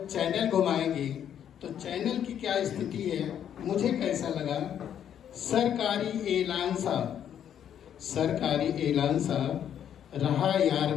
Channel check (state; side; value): quieter; right; 9.5 dB